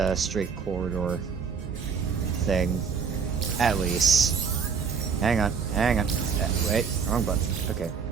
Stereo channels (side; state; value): left; quieter; 6.1 dB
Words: straight corridor thing. At least. Hang on. Wait, wrong button. Okay.